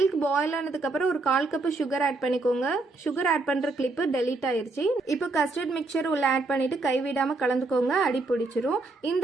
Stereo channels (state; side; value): quieter; left; 3.4 dB